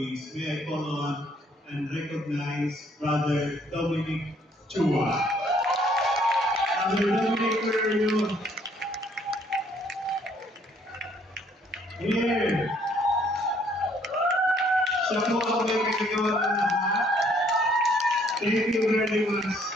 May I call on and recognize Brother Dominic Chua. Brother Dominic, where are you? Here. Siya po ang may kagagawa ng lahat. Thank you very much.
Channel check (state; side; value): normal; both; correlation 0.64